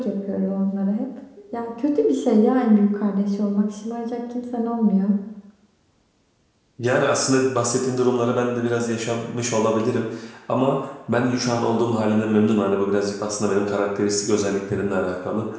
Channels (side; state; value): both; identical; correlation 1.00